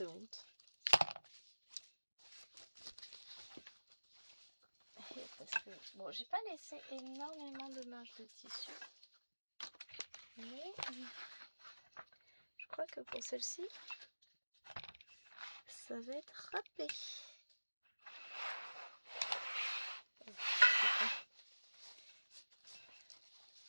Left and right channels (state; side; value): inverted; both; correlation -1.00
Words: honte. Parce que, bon, j'ai pas laissé énormément de marge de tissu. Mais je crois que pour celle-ci, ça va être râpé.